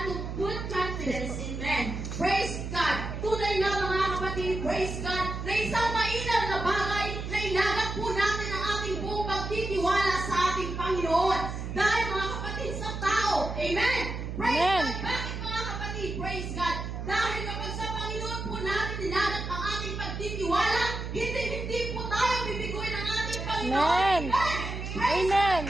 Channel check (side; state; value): right; noise; hum, 5 dB below the sound